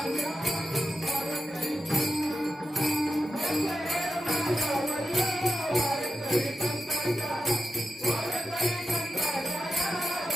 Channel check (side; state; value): both; normal; correlation 0.90